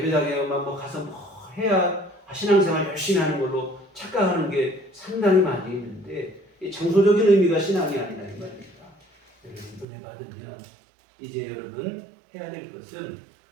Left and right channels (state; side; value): drops out; left; at 9.9 s